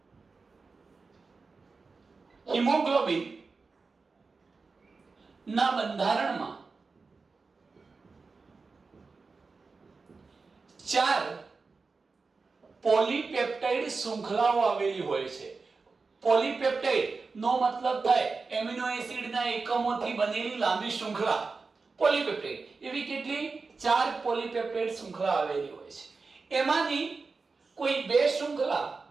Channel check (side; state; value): left; quieter; 4.3 dB